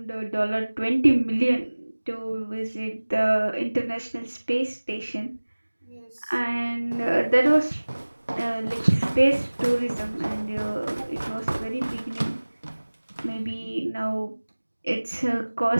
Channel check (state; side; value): inverted; both; correlation -1.00